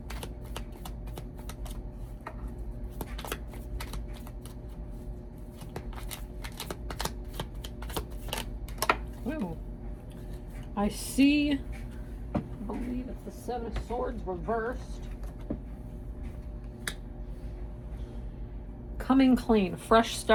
I see, I believe it's the Seven of Swords reversed. Coming clean, fresh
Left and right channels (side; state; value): both; identical; correlation 1.00